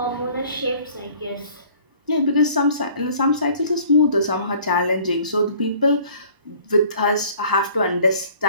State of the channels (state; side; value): late; left; 1.0 ms